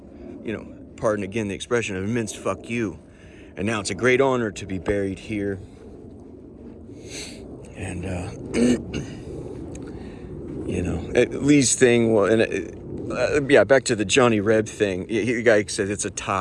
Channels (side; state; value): both; identical; correlation 1.00